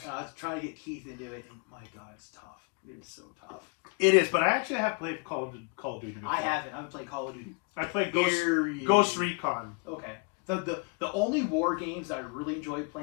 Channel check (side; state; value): right; quieter; 31.9 dB